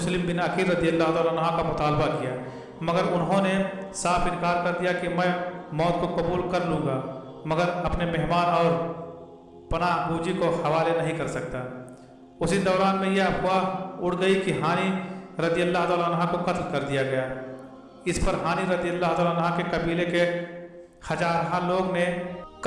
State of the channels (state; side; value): identical; both; correlation 1.00